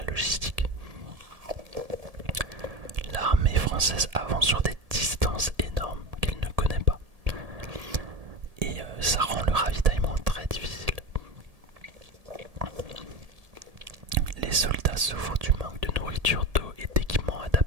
logistique. L'armée française avance sur des distances énormes qu'elle ne connaît pas. Et ça rend le ravitaillement très difficile. Les soldats souffrent du manque de nourriture, d'eau et d'équipements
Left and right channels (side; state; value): left; late; 1.8 ms